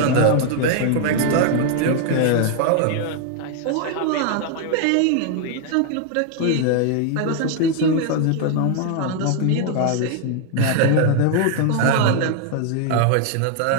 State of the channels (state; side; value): different; both; correlation 0.00